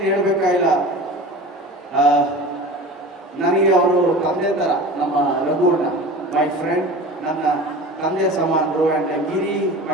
ಹೇಳಬೇಕಾಗಿಲ್ಲ, ನನಗೆ ಅವರು ತಂದೆ ಥರ. ನಮ್ಮ ರಘುವಣ್ಣ ಮೈ ಫ್ರೆಂಡ್, ನನ್ನ ತಂದೆ ಸಮಾನರು. And Giri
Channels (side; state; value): both; normal; correlation 0.36